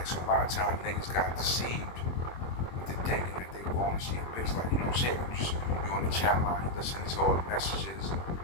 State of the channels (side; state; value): right; late; 23 ms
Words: So a lot of times niggas got deceived into thinking that they were going to see a bitch. Like, you know what I'm saying? You're on the chat line, you listen to all the messages, and